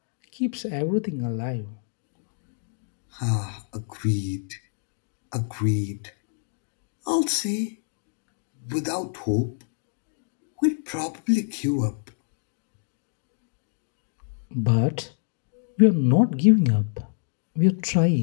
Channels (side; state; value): right; silent; digital silence